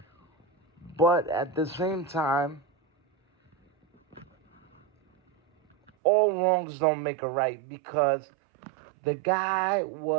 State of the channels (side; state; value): left; drops out; at 5.9 s